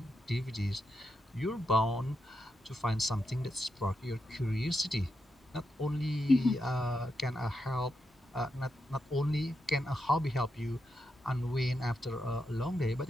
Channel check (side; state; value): both; normal; correlation 0.84